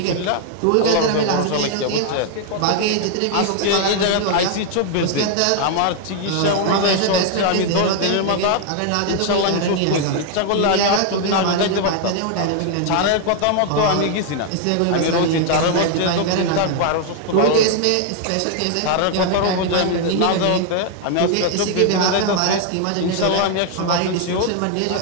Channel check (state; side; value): different; both; correlation 0.00